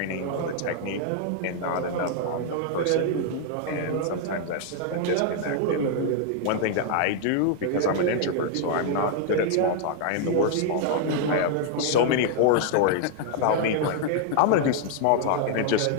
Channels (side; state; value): both; different; correlation 0.00